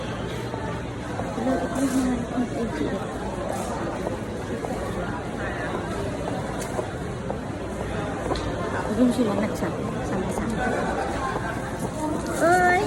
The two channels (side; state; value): both; identical; correlation 1.00